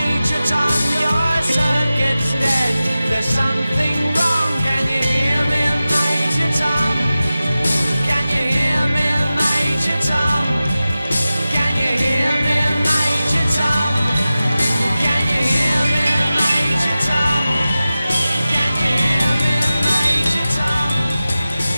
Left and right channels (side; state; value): both; inverted; correlation -0.95